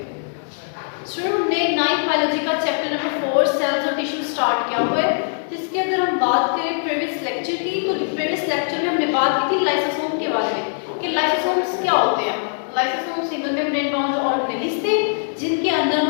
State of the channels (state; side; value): silent; right; digital silence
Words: स्टूडेंट, हमने 9th बायोलॉजी का चैप्टर नंबर 4 सेल्स और टिश्यू स्टार्ट किया हुआ है। इसके अंदर हम बात करें प्रीवियस लेक्चर की, तो प्रीवियस लेक्चर में हमने बात की थी लाइसोसोम के बारे में कि लाइसोसोम्स क्या होते हैं। Lysosome single membrane bound organelles थे जिनके अंदर